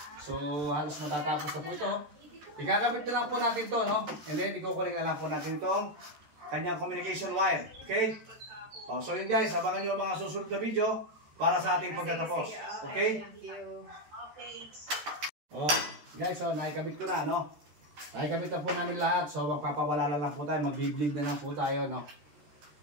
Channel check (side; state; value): left; late; 13 ms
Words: So, halos matatapos na po ito. Ikakabit na lang po natin to, no? And then, ikukuling na lang po natin itong kanyang communication wire. Okay? So yun guys, abangan nyo ang mga susunod na video para sa ating pagtatapos. Okay? Guys, nakikabit ko na, no? Nakikabit na po namin lahat. So, magpapawala na lang po tayo. Mag-bleed na lang po tayo, no?